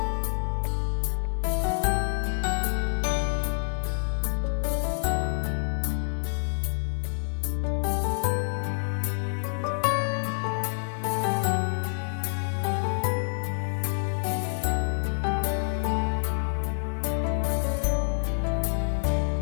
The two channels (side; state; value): right; silent; digital silence